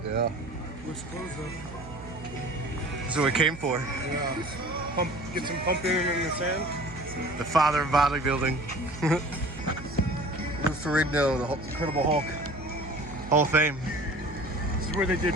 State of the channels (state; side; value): noise; right; hum, 14 dB below the sound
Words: Yeah. Looks closed though. That's what we came for. Yeah. Get some pumping in the sand. The father of bodybuilding. Lou Ferrigno, the Incredible Hulk. Hall of Fame. This is where they did